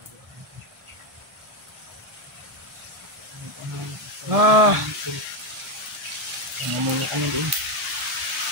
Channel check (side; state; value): left; late; 1.7 ms